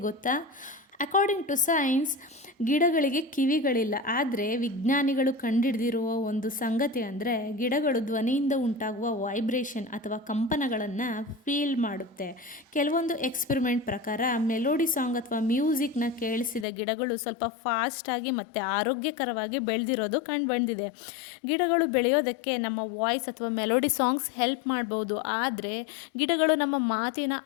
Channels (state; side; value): drops out; right; at 16.7 s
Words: ಗೊತ್ತಾ? ಅಕಾರ್ಡಿಂಗ್ ಟು ಸೈನ್ಸ್ ಗಿಡಗಳಿಗೆ ಕಿವಿಗಳಿಲ್ಲ. ಆದರೆ ವಿಜ್ಞಾನಿಗಳು ಕಂಡುಹಿಡಿದಿರುವ ಒಂದು ಸಂಗತಿ ಅಂದರೆ ಗಿಡಗಳು ಧ್ವನಿಯಿಂದ ಉಂಟಾಗುವ ವೈಬ್ರೇಷನ್ ಅಥವಾ ಕಂಪನಗಳನ್ನು ಫೀಲ್ ಮಾಡುತ್ತೆ. ಕೆಲವೊಂದು ಎಕ್ಸ್ಪೆರಿಮೆಂಟ್ ಪ್ರಕಾರ ಮೆಲೋಡಿ ಸಾಂಗ್ ಅಥವಾ ಮ್ಯೂಸಿಕ್ನ ಕೇಳಿಸಿದ ಗಿಡಗಳು ಸ್ವಲ್ಪ ಫಾಸ್ಟಾಗಿ ಮತ್ತು ಆರೋಗ್ಯಕರವಾಗಿ ಬೆಳೆದಿರೋದು ಕಂಡುಬಂದಿದೆ. ಗಿಡಗಳು ಬೆಳೆಯೋದಕ್ಕೆ ನಮ್ಮ ವಾಯ್ಸ್ ಅಥವಾ ಮೆಲೋಡಿ ಸಾಂಗ್ಸ್ ಹೆಲ್ಪ್ ಮಾಡ್ಬೋದು, ಆದರೆ ಗಿಡಗಳು ನಮ್ಮ ಮಾತಿನ